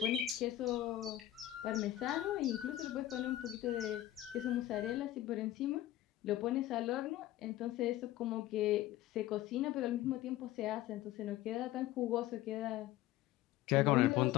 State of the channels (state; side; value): quieter; right; 14.3 dB